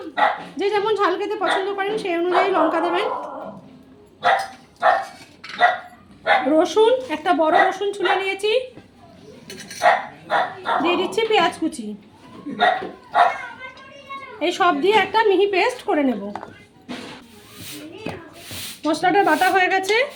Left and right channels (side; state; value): both; identical; correlation 1.00